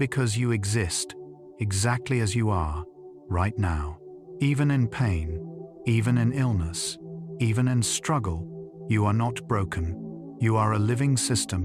you exist, exactly as you are, right now. Even in pain, even in illness, even in struggle, you are not broken. You are a living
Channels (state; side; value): identical; both; correlation 1.00